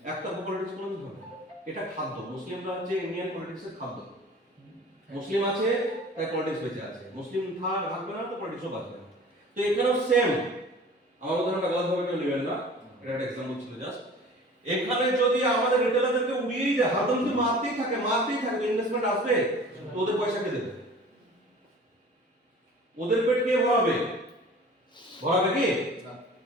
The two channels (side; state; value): both; normal; correlation 0.44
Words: একটা পলিটিক্স কোনোদিন হবে না। এটা খাদ্য, মুসলিমরা হচ্ছে ইন্ডিয়ান পলিটিক্সের খাদ্য। মুসলিম আছে তাই পলিটিক্স বেঁচে আছে, মুসলিম থাকবে না তো পলিটিক্সও বাঁচবে না। তো এখানেও সেম, আমার উদাহরণটা গলতভাবে কেউ নেবেন না, এটা একটা এক্সাম্পল ছিল জাস্ট। এখানে যদি আমাদের রিটেলারদেরকে উড়িয়েই দেয়, হাতে যদি মারতেই থাকে ইনভেস্টমেন্ট আসবে তো ওদের পয়সা কে দেবে? ওদের পেট কে ভরাবে? ভরাবে কি?